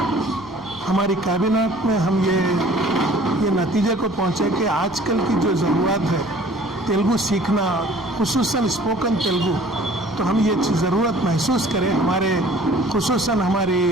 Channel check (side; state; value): left; noise; rumble, 25 dB below the sound